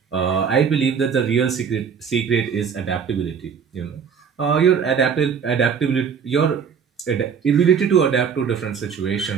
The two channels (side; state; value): left; quieter; 6.8 dB